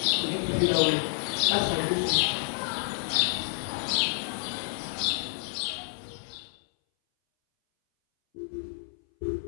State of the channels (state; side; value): silent; right; 59 dB below the other